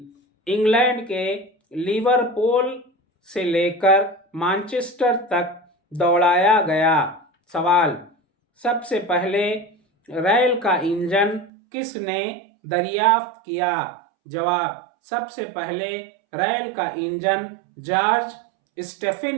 انگلینڈ کے لیورپول سے لے کر مانچسٹر تک دوڑایا گیا۔ سوال: سب سے پہلے ریل کا انجن کس نے دریافت کیا؟ جواب: سب سے پہلے ریل کا انجن جارج اسٹیفن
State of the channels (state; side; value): drops out; left; at 11.5 s